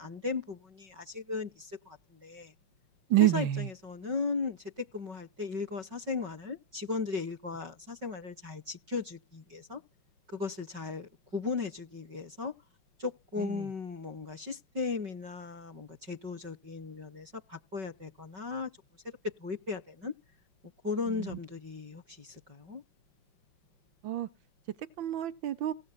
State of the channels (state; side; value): late; left; 5.3 ms